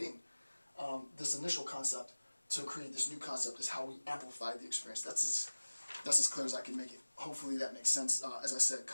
this initial concept to create this new concept is how we amplify the experience. That's as clear as I can make it. Hopefully that makes sense. As I said,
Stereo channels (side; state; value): both; inverted; correlation -1.00